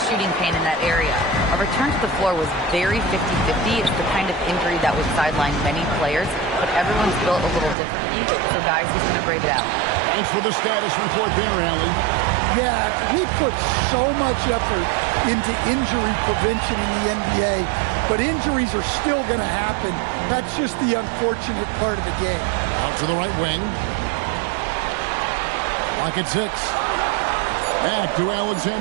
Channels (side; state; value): left; drops out; at 7.8 s